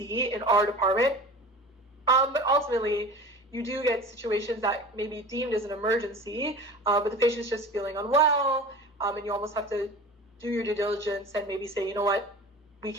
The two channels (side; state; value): both; normal; correlation 0.37